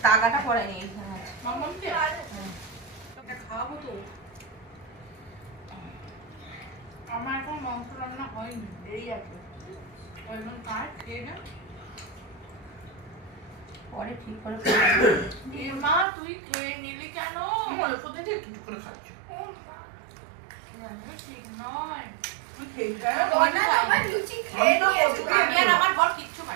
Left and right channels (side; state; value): left; drops out; at 16.1 s